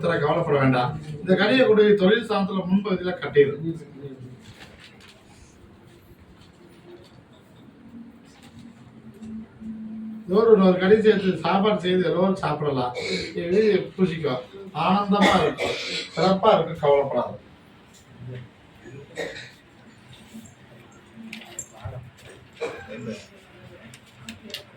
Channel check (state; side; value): identical; both; correlation 1.00